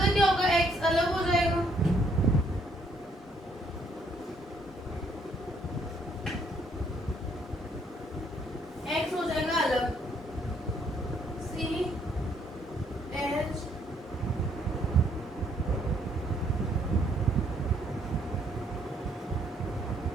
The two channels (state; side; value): normal; both; correlation 0.68